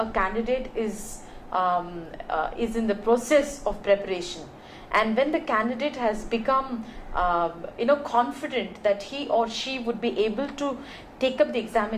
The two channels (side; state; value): both; identical; correlation 1.00